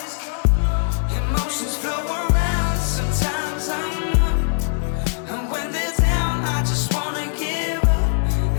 Emotions flow around, sometimes I'm up, and when they're down I just wanna give up.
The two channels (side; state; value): right; silent; digital silence